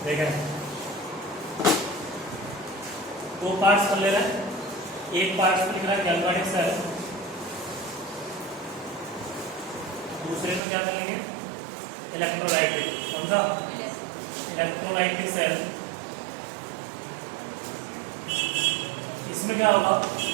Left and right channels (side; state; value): left; drops out; at 10.6 s